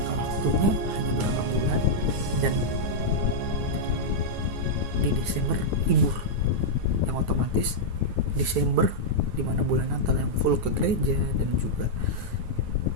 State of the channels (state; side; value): late; left; 9.5 ms